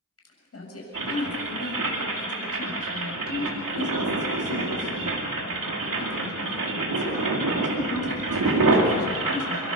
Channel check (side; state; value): both; normal; correlation 0.15